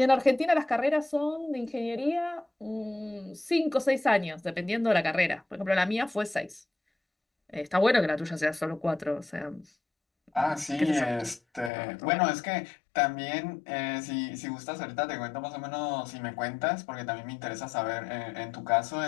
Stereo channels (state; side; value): drops out; right; at 11.7 s